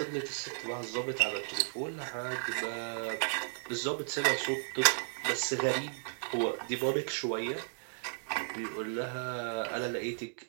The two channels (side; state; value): left; silent; digital silence